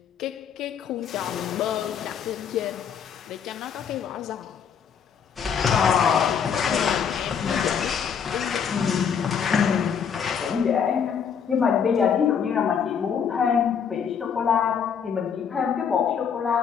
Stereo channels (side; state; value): right; quieter; 7.2 dB